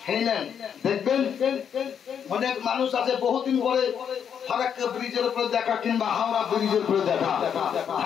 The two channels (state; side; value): quieter; right; 8.0 dB